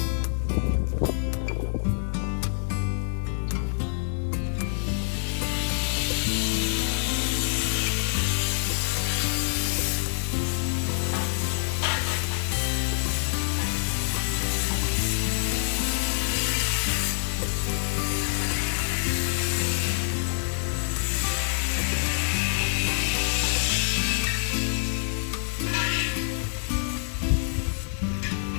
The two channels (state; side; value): silent; right; digital silence